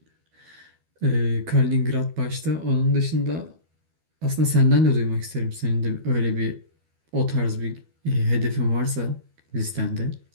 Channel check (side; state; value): left; late; 12 ms